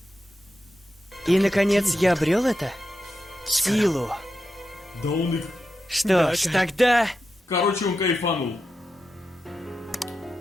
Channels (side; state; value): both; normal; correlation 0.88